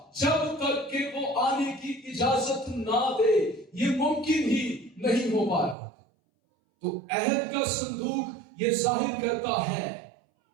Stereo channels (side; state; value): left; drops out; at 5.8 s